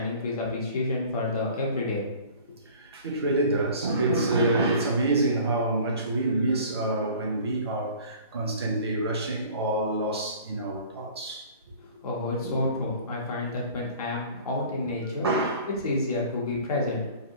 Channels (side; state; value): both; inverted; correlation -0.46